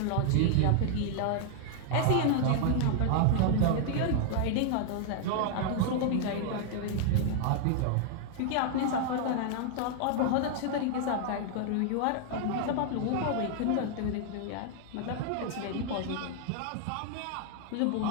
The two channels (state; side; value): different; both; correlation 0.00